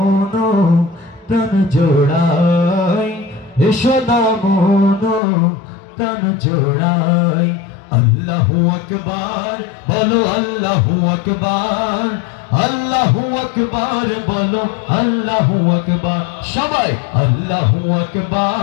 প্রাণ জোড়াই, এসো না মন প্রাণ জোড়াই। আল্লাহু আকবার বলো, আল্লাহু আকবার, আল্লাহু আকবার বলো, আল্লাহু আকবার। সবাই আল্লাহু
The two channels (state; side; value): drops out; right; at 5.2 s